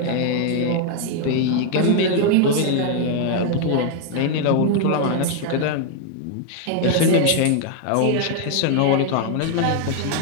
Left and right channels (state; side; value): different; both; correlation 0.00